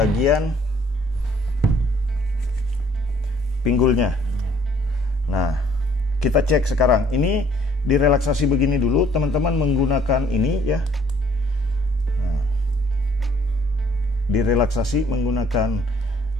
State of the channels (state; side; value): normal; both; correlation 0.60